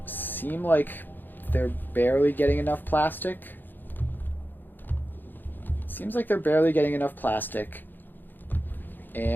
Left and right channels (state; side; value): late; right; 0.091 ms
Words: seem like they're barely getting enough plastic. Seems like they're barely getting enough plastic,